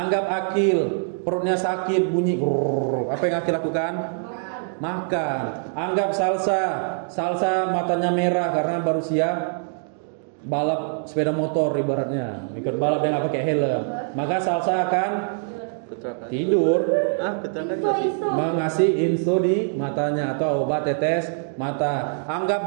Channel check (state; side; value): silent; left; digital silence